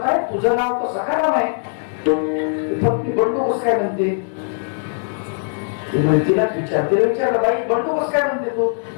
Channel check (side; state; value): right; silent; digital silence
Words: तुझं नाव तर सखाराम आहे, पत्नी बंडू कसं काय म्हणते. तिलाच विचारलं, बाई बंडू कसं काय म्हणते तू.